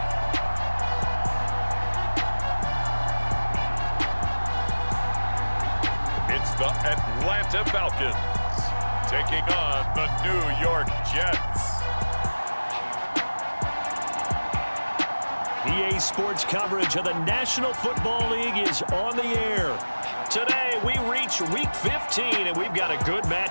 The Atlanta Falcons taking on the New York Jets. EA Sports coverage of the National Football League is on the air. Today we reach Week 15 and we've got a good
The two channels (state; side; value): inverted; both; correlation -1.00